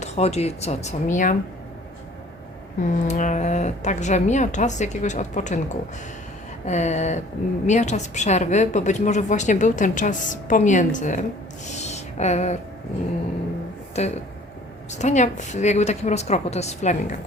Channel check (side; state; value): both; normal; correlation 0.52